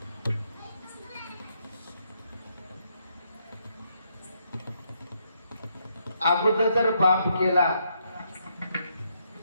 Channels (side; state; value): both; inverted; correlation -0.76